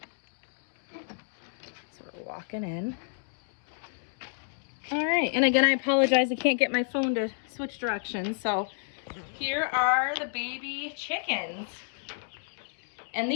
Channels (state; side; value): silent; right; 58 dB below the other